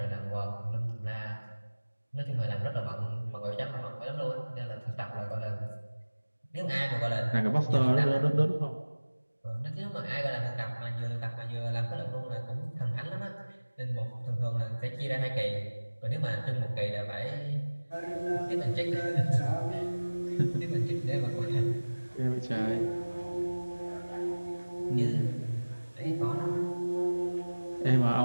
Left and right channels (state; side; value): inverted; both; correlation -1.00